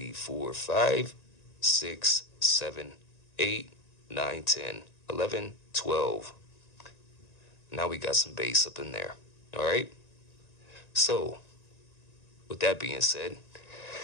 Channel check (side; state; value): right; late; 1.9 ms